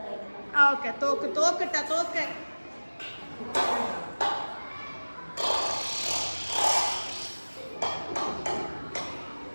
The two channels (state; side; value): inverted; both; correlation -1.00